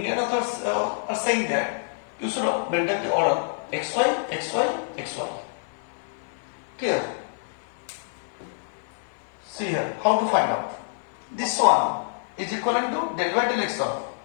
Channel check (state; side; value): silent; right; 61 dB below the other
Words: authors are saying that you should maintain the order xy, xy, xy. Clear? See here, how to find out. This one is equivalent to del by del x of